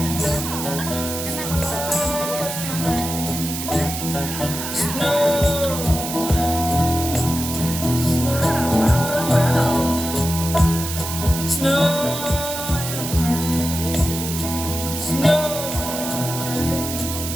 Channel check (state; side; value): noise; right; hiss, 6 dB below the sound